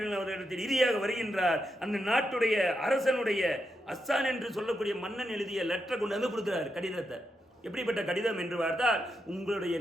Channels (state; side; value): normal; both; correlation 0.84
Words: அவர்களிடத்தில் இறுதியாக வருகின்றார். அந்த நாட்டுடைய அரசனுடைய அஸ்ஸான் என்று சொல்லக்கூடிய மன்னன் எழுதிய லெட்டரை கொண்டு வந்து கொடுக்கிறார், கடிதத்தை. எப்படிப்பட்ட கடிதம் என்று பார்த்தால், உங்களுடைய